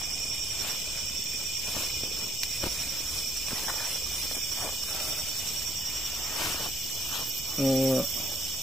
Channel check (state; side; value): noise; right; hum, 19 dB below the sound